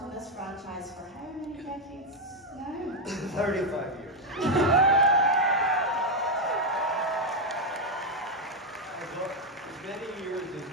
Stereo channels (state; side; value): normal; both; correlation 0.03